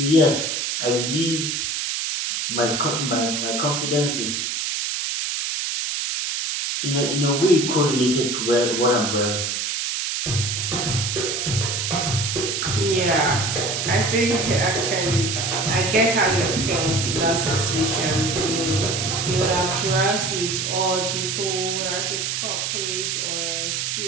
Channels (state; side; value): noise; right; hiss, 1 dB below the sound